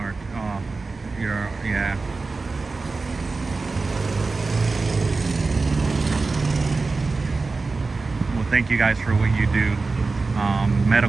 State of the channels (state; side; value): quieter; left; 3.9 dB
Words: Oh, yeah. Well, thank you guys for what you do.